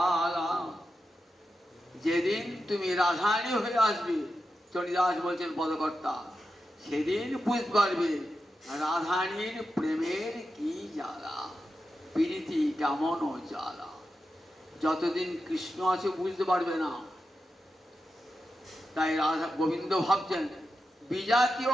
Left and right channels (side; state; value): both; normal; correlation 0.89